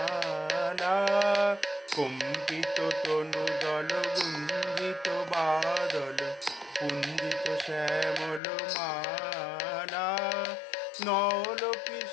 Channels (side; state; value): right; drops out; at 8.4 s